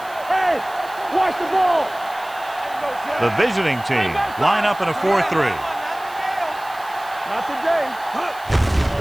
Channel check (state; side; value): noise; right; hiss, 21 dB below the sound